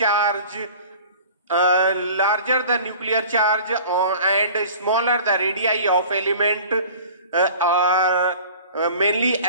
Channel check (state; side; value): inverted; both; correlation -0.44